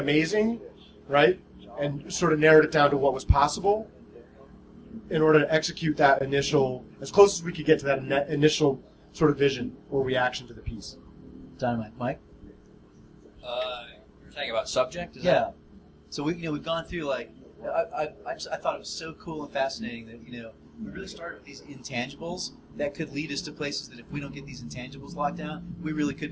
right, and sort of narrowed it down to what was possible in order to execute that initial, as close as we could get to that initial sort of vision or reaction to the piece. Dynamite. Mike? You're saying about subject? Is Yeah. that- So we've gone through, like, I thought it was so cool and fascinating that, you know, we really started with these intangibles that could lead us to places that if we don't get these intangibles locked down, we really could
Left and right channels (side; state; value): both; identical; correlation 1.00